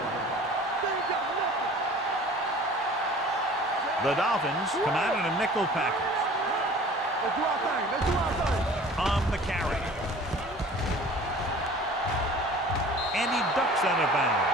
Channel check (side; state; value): both; normal; correlation 0.45